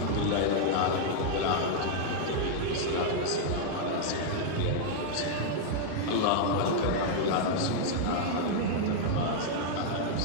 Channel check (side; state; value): both; different; correlation -0.01